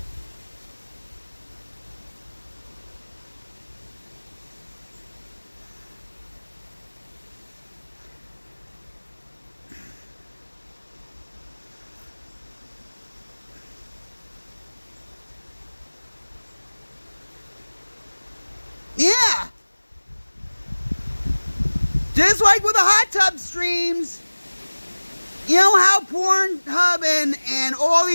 Just like with the hot tub streams. You know how Pornhub and all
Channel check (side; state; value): both; inverted; correlation -1.00